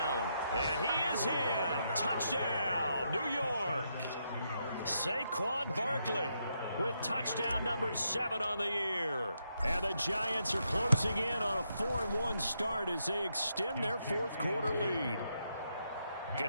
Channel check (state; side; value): inverted; both; correlation -0.80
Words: And he is in. Touchdown, New York. Saquon Barkley with touchdown number 7 on the year. And the Giants are closing in on a 4-1 start as they extend their 4th quarter lead.